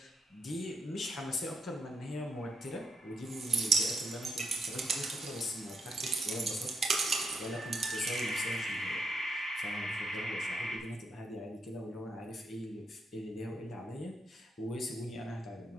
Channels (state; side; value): normal; both; correlation 0.79